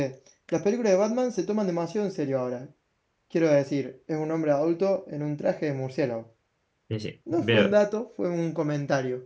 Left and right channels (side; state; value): both; identical; correlation 1.00